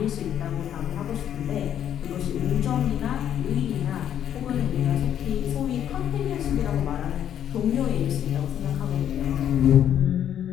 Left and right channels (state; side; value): quieter; right; 10.1 dB